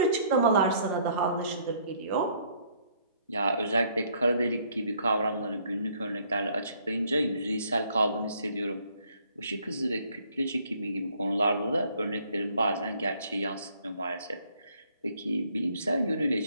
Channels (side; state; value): both; inverted; correlation -0.64